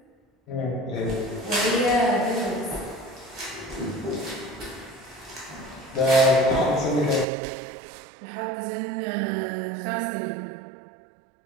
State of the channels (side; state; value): left; drops out; at 7.2 s